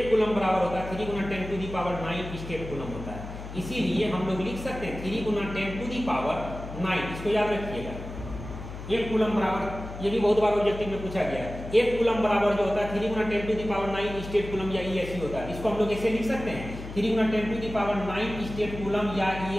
कूलम बराबर होता है 3 × 10⁹ स्टेट कूलम होता है। इसीलिए हम लोग लिख सकते हैं 3 × 10⁹, इसको याद रखिएगा। 1 कूलम बराबर, ये भी बहुत बार ऑब्जेक्टिव में पूछा गया है। 1 कूलम बराबर जो होता है 3 × 10⁹ स्टेट कूलम या ESU होता है। इसको हम लोग ऐसे लिख सकते हैं 3 × 10⁹ स्टेट कूलम या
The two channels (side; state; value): left; noise; hum, 10 dB below the sound